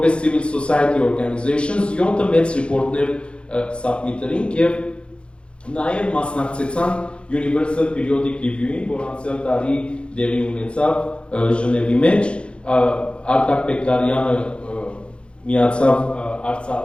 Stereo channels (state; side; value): late; right; 0.057 ms